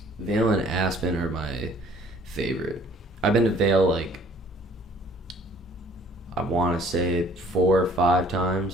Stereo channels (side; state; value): both; normal; correlation 0.55